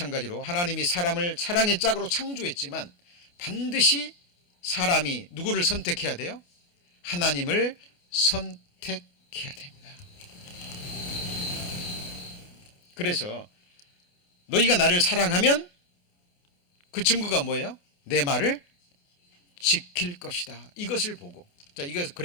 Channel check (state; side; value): late; right; 28 ms